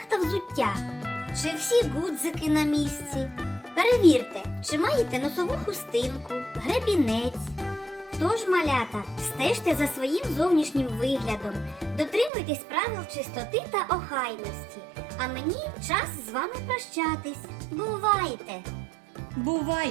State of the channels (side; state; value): left; drops out; at 12.3 s